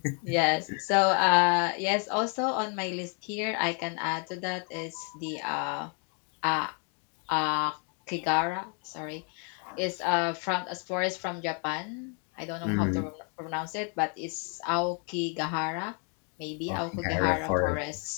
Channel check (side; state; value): right; quieter; 39.3 dB